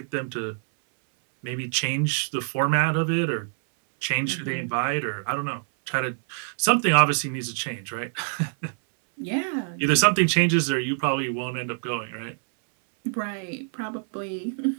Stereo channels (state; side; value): silent; left; 61 dB below the other